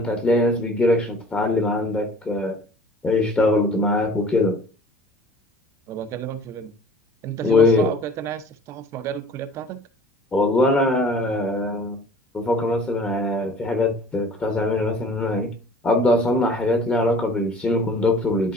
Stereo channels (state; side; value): normal; both; correlation 0.47